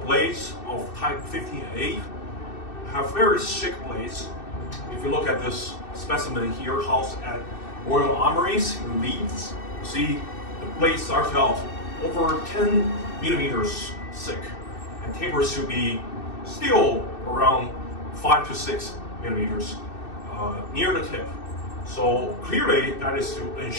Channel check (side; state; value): right; late; 2.6 ms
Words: blades of type 15A have very thick blades. If you look at this specimen here, housed at Royal Armories in Leeds, you see the blade starts out over 10 millimeters thick and tapers to be still around 5 to 6 millimeters near the tip. So clearly that is to